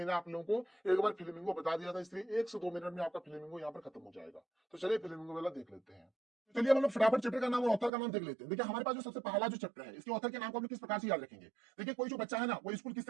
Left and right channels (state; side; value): drops out; left; at 7.9 s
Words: आप लोगों को एक बार फ्लेमिंगो बता दिया था, इसलिए 1 से 2 मिनट में आपका फ्लेमिंगो यहाँ पर खत्म हो जाएगा। तो चलिए फ्लेमिंगो वाला देख लेते हैं। चलिए हम लोग फटाफट चैप्टर का नाम और ऑथर का नाम देख लेते हैं। देखिए हमारे पास जो सबसे पहला जो चैप्टर है, इसके ऑथर के नाम को हम लोग किस प्रकार से याद रखेंगे। देखिए कोई जो बच्चा है ना वो स्कूल